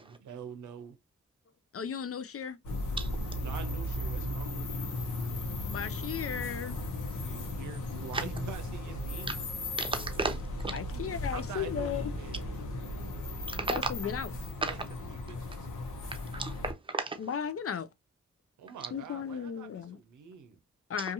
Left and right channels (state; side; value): normal; both; correlation 0.36